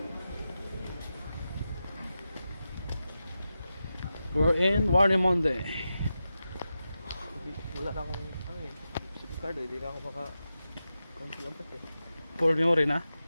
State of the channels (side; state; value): both; inverted; correlation -0.91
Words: We're in Warnemonde. Wala na akong ano eh, SIM card eh, hindi na ako maka-cancel eh. For memory na?